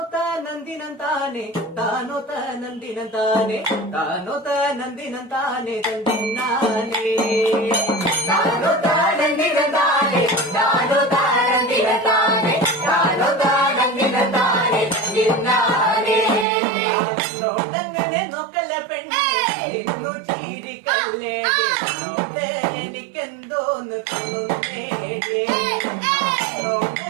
താനന്ദിനന്താനെ താനോ താനന്ദിനന്താനെ താനോ താനന്ദിനന്താനെ തന്തിന്നാനെ താനോ താനന്ദിനന്താനെ താനോ താനന്ദിനന്താനെ താനോ താനന്ദിനന്താനെ തന്തിന്നാനെ നോട്ടങ്ങനെ നോക്കല്ല പെണ്ണെ നിന്നു ചീരിക്കല്ലേ നോട്ട് എനിക്കെന്തോന്ന് തോന്നുന്നേ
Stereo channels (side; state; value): left; drops out; at 16.4 s